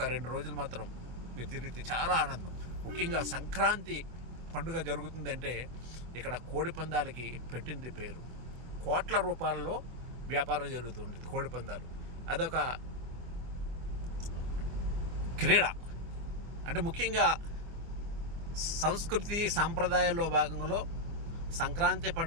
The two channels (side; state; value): left; late; 24 ms